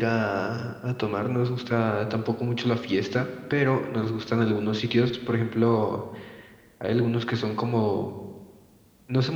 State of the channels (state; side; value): identical; both; correlation 1.00